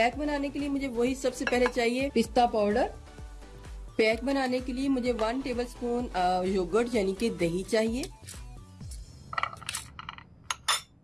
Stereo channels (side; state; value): both; identical; correlation 1.00